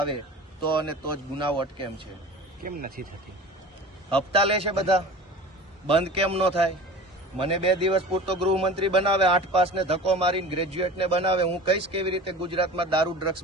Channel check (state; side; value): normal; both; correlation 0.38